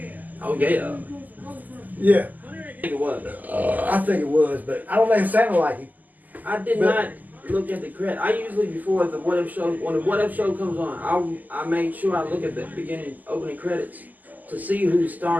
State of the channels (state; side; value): late; left; 0.082 ms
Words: Oh yeah. Yeah. I think it was. I think it was, but I don't think it sounded like it. I did not look at the credit. I usually before the What If show, when the What If show comes on, I make sure I look at the opening credits to see who's